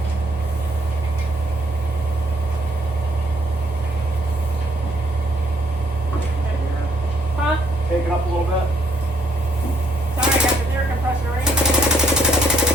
Huh? Take it up a little bit. Sorry, I got the air compressor right.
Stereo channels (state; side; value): normal; both; correlation 0.68